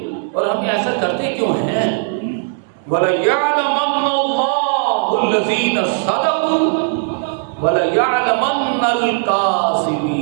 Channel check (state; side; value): silent; left; 68 dB below the other